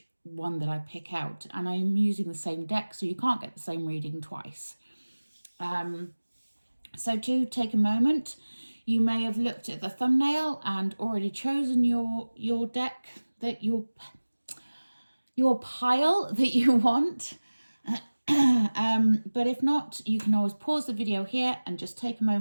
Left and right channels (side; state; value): both; inverted; correlation -1.00